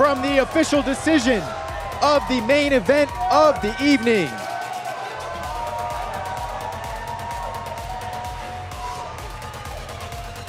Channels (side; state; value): both; identical; correlation 1.00